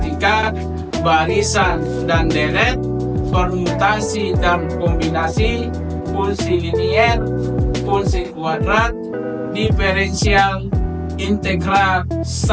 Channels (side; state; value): both; identical; correlation 1.00